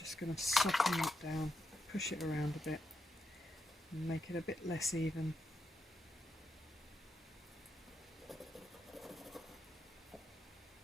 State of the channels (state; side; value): normal; both; correlation 0.84